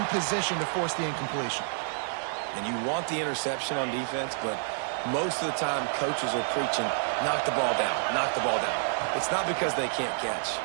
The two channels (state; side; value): silent; left; digital silence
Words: position to force the incompletion. And you want the interception on defense, but most of the time coaches are preaching, knock the ball down, knock the ball down. It's not because they can't catch.